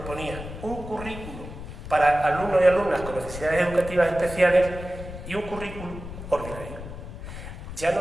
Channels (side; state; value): left; noise; rumble, 10 dB below the sound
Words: un currículo para alumnos y alumnas con necesidades educativas especiales y un currículum ordinario. Ya